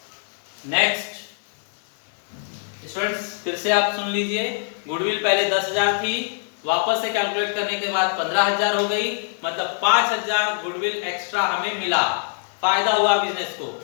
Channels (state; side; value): silent; right; digital silence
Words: नेक्स्ट स्टूडेंट्स फिर से आप सुन लीजिए, गुडविल पहले 10,000 थी, वापस से कैलकुलेट करने के बाद 15,000 हो गई, मतलब 5,000 गुडविल एक्स्ट्रा हमें मिला, फायदा हुआ बिजनेस को।